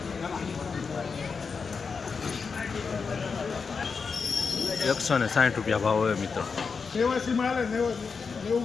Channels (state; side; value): quieter; right; 5.3 dB